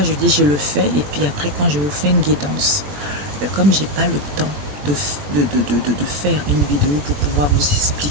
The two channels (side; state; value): left; late; 21 ms